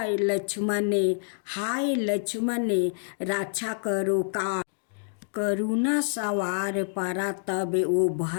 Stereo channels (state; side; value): silent; right; digital silence